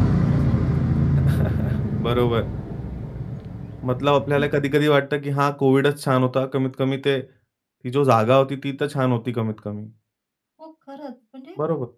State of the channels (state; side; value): identical; both; correlation 1.00